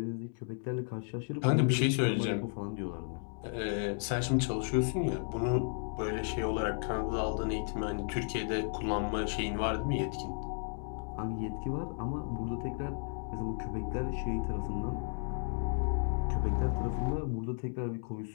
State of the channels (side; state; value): right; silent; 55 dB below the other